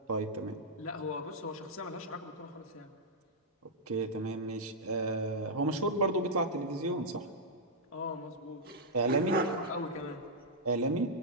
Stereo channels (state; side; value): normal; both; correlation -0.07